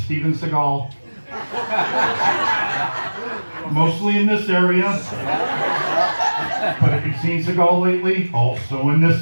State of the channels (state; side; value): inverted; both; correlation -1.00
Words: Seagal. Mostly in this area. But if you've seen Seagal lately, also in